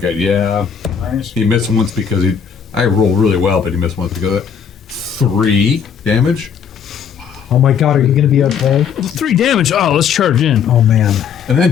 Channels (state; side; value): quieter; right; 7.3 dB